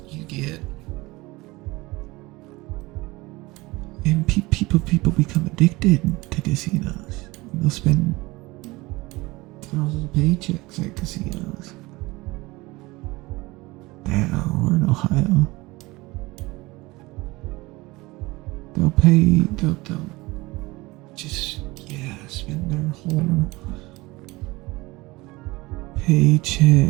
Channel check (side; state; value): left; quieter; 21.6 dB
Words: You get, and people become addicted to casinos. They'll spend thousands of paychecks at casinos. Damn, we're in Ohio. They'll just, spend their whole